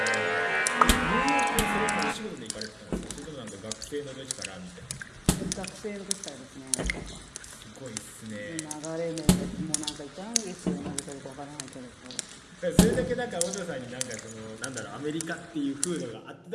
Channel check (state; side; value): identical; both; correlation 1.00